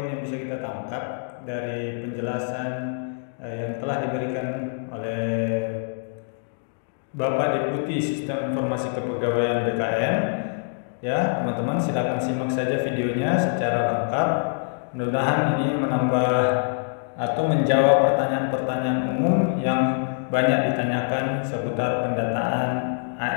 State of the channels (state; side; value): silent; right; digital silence